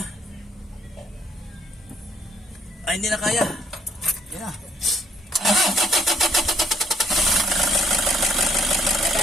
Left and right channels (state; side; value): normal; both; correlation 0.66